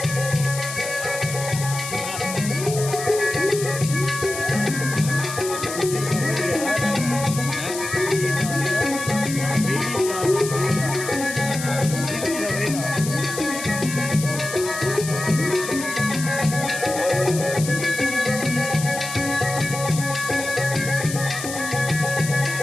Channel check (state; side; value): noise; left; hiss, 8 dB below the sound